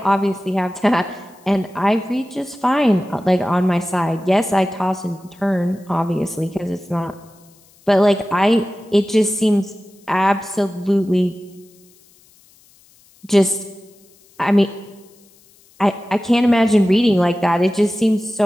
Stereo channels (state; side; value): noise; left; hiss, 30 dB below the sound